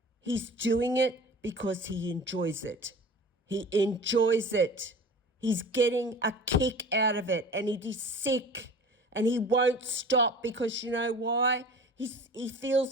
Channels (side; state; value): both; normal; correlation 0.40